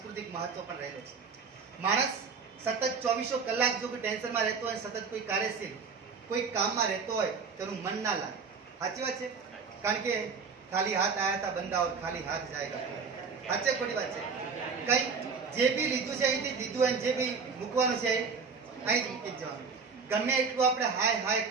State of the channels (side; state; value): left; quieter; 5.3 dB